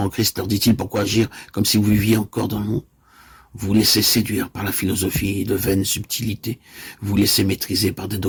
Christ, leur dit-il, pourquoi agir comme si vous viviez encore dans le monde? Vous vous laissez séduire par la philosophie de vaines subtilités. Vous vous laissez maîtriser par des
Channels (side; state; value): both; identical; correlation 1.00